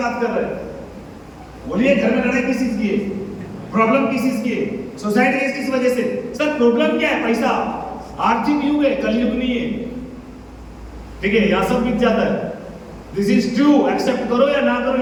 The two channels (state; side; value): identical; both; correlation 1.00